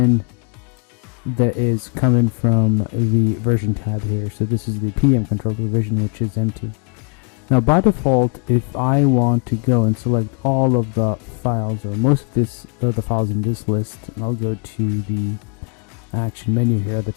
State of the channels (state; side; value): quieter; right; 39.1 dB